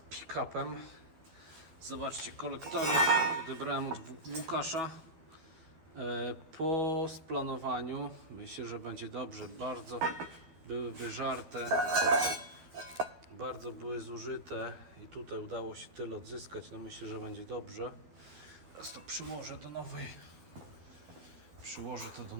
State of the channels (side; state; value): left; late; 12 ms